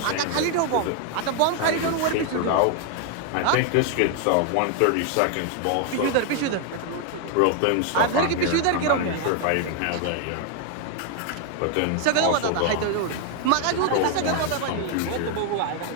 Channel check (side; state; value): both; different; correlation 0.00